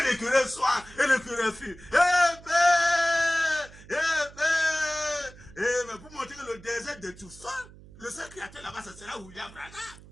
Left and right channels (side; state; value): right; noise; hum, 20 dB below the sound